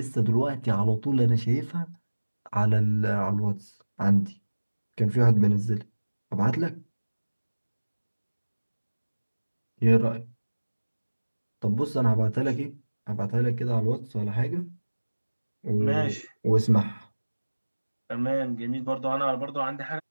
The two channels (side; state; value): both; inverted; correlation -1.00